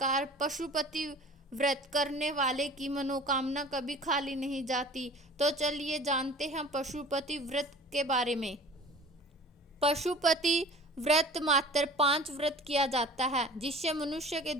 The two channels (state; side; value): normal; both; correlation 0.43